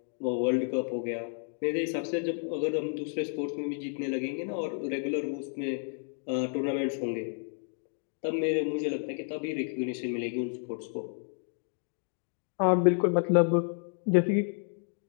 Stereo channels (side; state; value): right; silent; 57 dB below the other